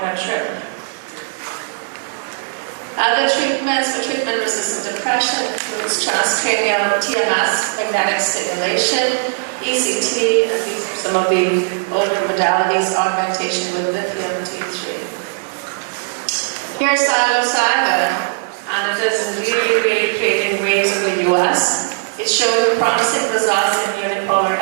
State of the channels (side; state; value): left; silent; digital silence